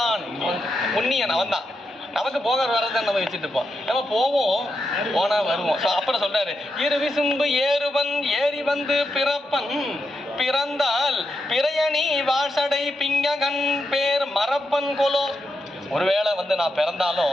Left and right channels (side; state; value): both; normal; correlation 0.85